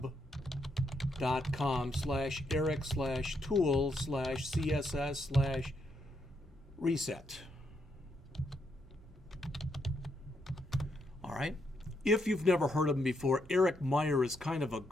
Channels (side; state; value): both; normal; correlation 0.78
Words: All right. If you've never heard of him before, Eric Meier is kind of a